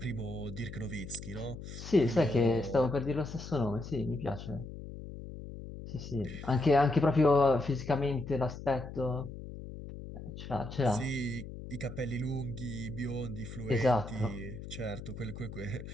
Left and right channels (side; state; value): left; noise; hum, 11 dB below the sound